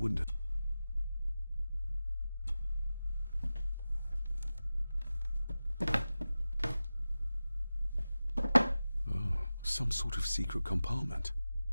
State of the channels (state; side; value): inverted; both; correlation -0.95